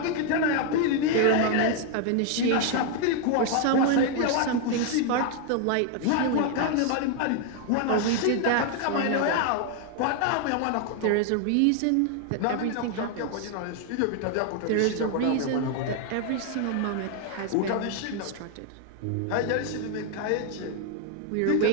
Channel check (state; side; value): different; both; correlation 0.00